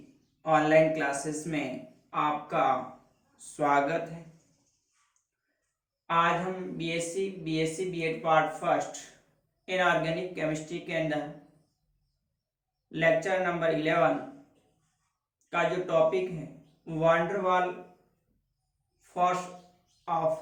online classes में आपका स्वागत है। आज हम BSc BEd part first inorganic chemistry के अंदर लेक्चर नंबर 11 का जो टॉपिक है वांडरवाल फोर्स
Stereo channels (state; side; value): identical; both; correlation 1.00